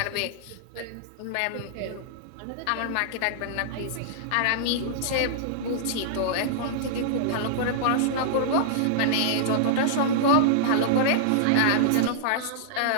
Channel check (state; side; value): different; both; correlation -0.02